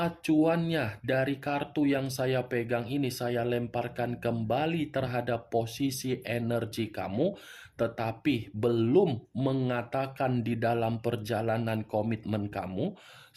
dari kartu yang saya pegang ini saya lemparkan kembali terhadap posisi energi kamu, tetapi belum mengatakan di dalam perjalanan komitmen kamu,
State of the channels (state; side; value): identical; both; correlation 1.00